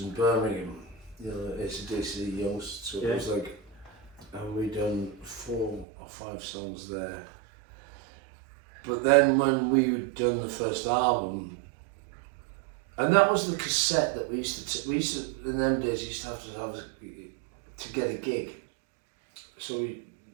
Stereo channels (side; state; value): left; drops out; at 5.9 s